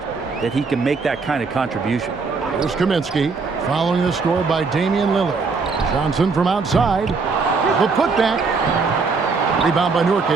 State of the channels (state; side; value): quieter; left; 4.6 dB